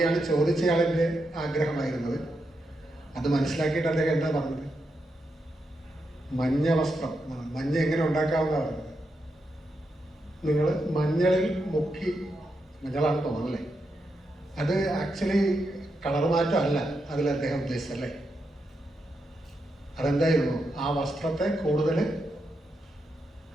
ചോദിച്ചയാളിൻ്റെ ആഗ്രഹമായിരുന്നത്. അത് മനസ്സിലാക്കിയിട്ട് അദ്ദേഹം എന്താ പറഞ്ഞത്? മഞ്ഞ വസ്ത്രം, മഞ്ഞ എങ്ങനെ ഉണ്ടാക്കാമെന്നാണ് പറഞ്ഞത്. നിങ്ങൾ മഞ്ഞളിൽ മുക്കി, മഞ്ഞളാണ് തോന്നല്ലേ, അത് ആക്ച്വലി കളർ മാറ്റം അല്ല അതിൽ അദ്ദേഹം ഉദ്ദേശിച്ചല്ലേ. അതെന്തായിരുന്നു? ആ വസ്ത്രത്തെ കൂടുതൽ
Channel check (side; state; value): both; normal; correlation 0.85